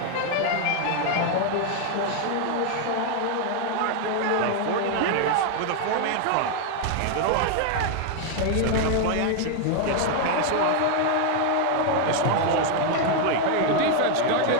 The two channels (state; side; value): different; both; correlation 0.01